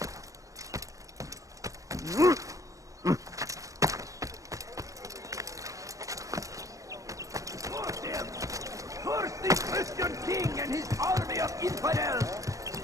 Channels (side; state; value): left; late; 0.16 ms